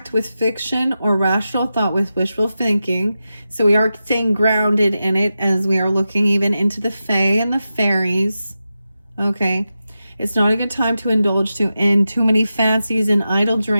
with fiction or rational thought with wishful thinking. So we are staying grounded in it as we are looking even into the fae and the fairies. Okay. It's not a good time to indulge in too many fancies and idle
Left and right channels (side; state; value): both; inverted; correlation -0.91